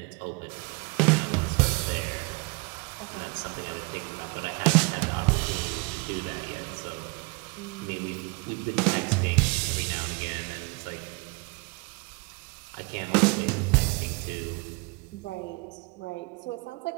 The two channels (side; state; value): left; quieter; 29.6 dB